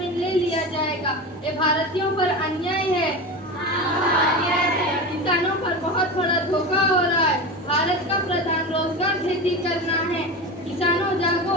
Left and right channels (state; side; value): normal; both; correlation 0.25